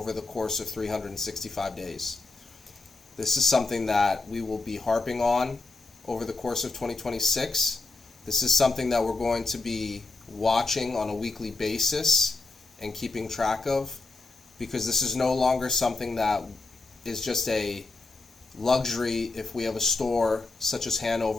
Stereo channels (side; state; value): right; quieter; 3.5 dB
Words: the course of 365 days. This is something that we will be harping on over the course of 2026. This is something that we're going to be watching on a weekly basis and keeping track of, because this is no longer something that is just a luxury if we have a store such as